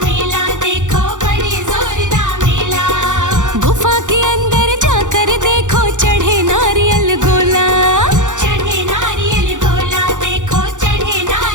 मेला देखो, बड़े जोरदार मेला। गुफा के अंदर जाकर देखो चढ़े नारियल गोला। चढ़े नारियल गोला देखो, चढ़े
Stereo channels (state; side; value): late; left; 0.86 ms